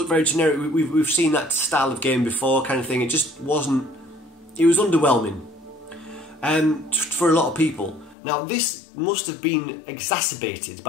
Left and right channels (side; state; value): right; drops out; at 8.2 s